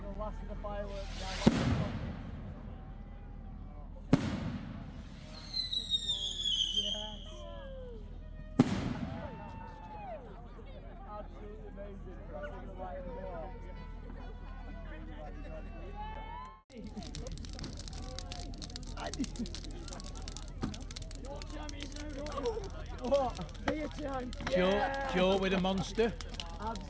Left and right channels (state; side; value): identical; both; correlation 1.00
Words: blasting the fireworks down. Absolutely amazing. Crossing the light of the wall. What? Be a time. Joe with a monster.